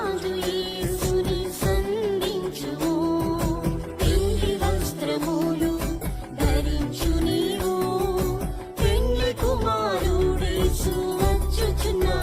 యేసుని సంధించుము. పెళ్లి వస్త్రములు ధరించు నీవు, పెళ్లి కుమారుడేసు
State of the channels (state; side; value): identical; both; correlation 1.00